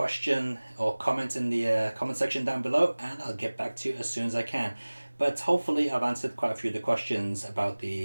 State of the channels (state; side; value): inverted; both; correlation -1.00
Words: or comment in the comment section down below, and I'll get back to you as soon as I can. But hopefully I've answered quite a few of the questions about